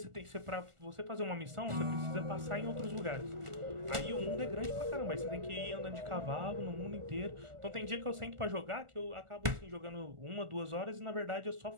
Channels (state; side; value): late; left; 1.4 ms